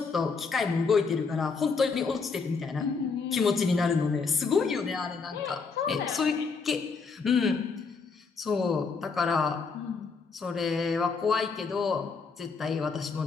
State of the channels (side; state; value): right; quieter; 4.9 dB